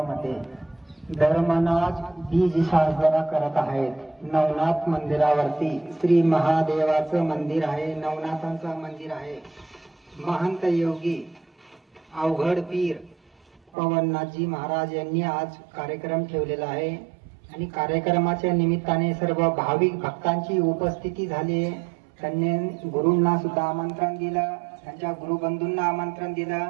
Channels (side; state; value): left; drops out; at 13.6 s